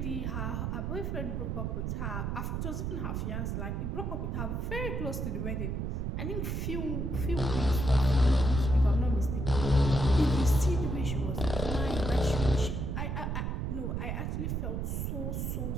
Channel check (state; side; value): noise; right; rumble, 1 dB below the sound